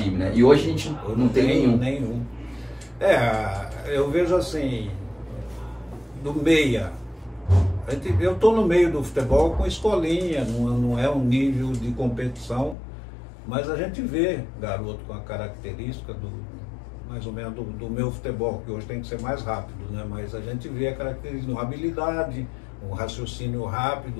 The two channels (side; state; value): right; drops out; at 12.8 s